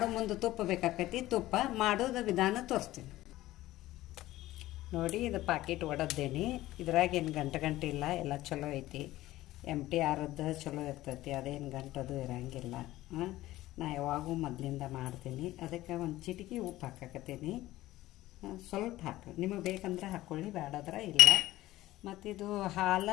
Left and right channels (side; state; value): right; quieter; 16.3 dB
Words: ಮುಂದೆ ತುಪ್ಪ ಬೇಕಾಕೈತಿ. ತುಪ್ಪ ಮಾಡೋದು ವಿಧಾನ ತೋರಿಸ್ತೀನಿ ನೋಡಿ. ಇದು ಪ್ಯಾಕೆಟ್ ಒಡದ್ದೇನಿ. ಇದ್ರಾಗ ಏನು ಗಂಟೆ ಇಲ್ಲ, ಎಲ್ಲ ಚಲೋ ಐತಿ. MTRದ್ದು ಚಲೋ ಇರ್ತೈತಿ, ಅದೇನು ಗಂಟದು ಇರಂಗಿಲ್ಲ. ನಾ ಯಾವಾಗೂ ಮೊದಲಿಂದ ಮಾಡ್ತೀನಿ. ಅದಕ್ಕೆ ಒಂದು ಚಿಟಿಕೆ ಉಪ್ಪು ಹಾಕಕತ್ತೀನಿ. ಸ್ವಲ್ಪ ಹಾಕಿ, ನಿಮಗೆ ಬೇಕಂದ್ರೆ ಹಾಕ್ಕೊಳ್ಳಿ, ಬೇಡಾದ್ರೆ ಇಲ್ಲ. ಮತ್ತು ಇದು